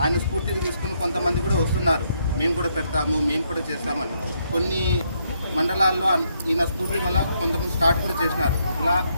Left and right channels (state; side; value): inverted; both; correlation -0.75